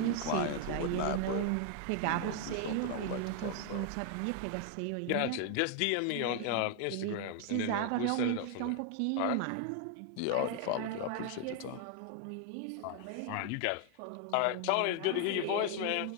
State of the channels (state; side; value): different; both; correlation 0.00